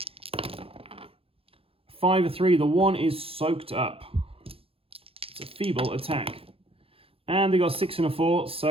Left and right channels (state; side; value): late; left; 0.27 ms